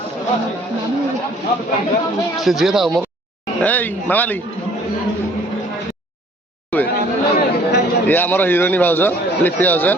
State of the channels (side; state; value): both; normal; correlation 0.56